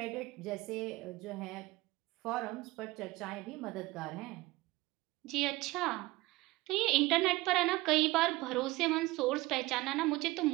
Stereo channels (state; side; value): quieter; left; 20.3 dB